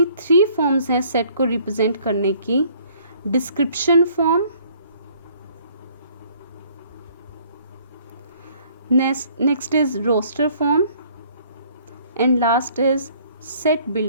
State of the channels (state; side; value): inverted; both; correlation -0.59